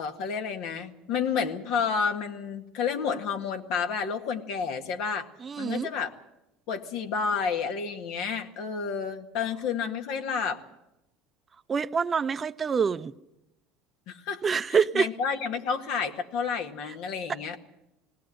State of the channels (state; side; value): normal; both; correlation 0.51